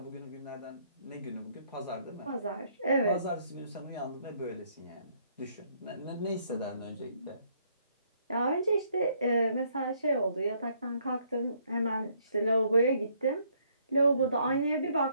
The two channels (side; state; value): both; inverted; correlation -0.68